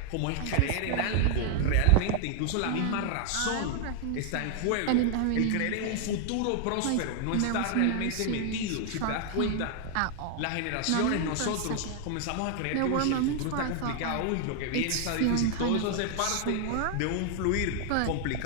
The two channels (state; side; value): different; both; correlation 0.00